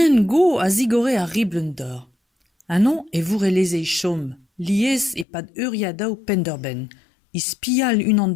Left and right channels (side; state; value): right; drops out; at 5.2 s